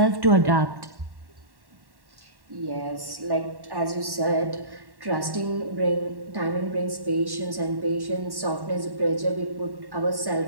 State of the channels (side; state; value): left; late; 1.1 ms